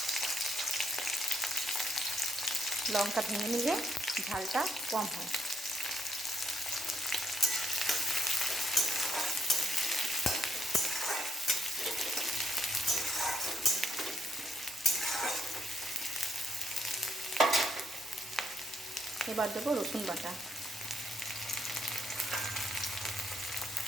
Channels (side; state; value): both; normal; correlation 0.75